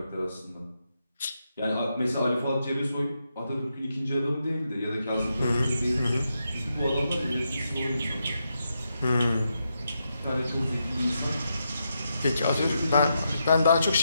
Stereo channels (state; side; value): inverted; both; correlation -0.84